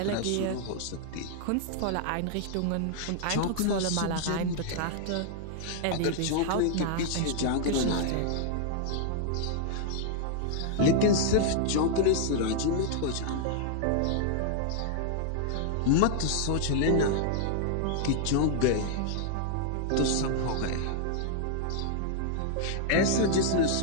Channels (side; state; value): both; different; correlation -0.01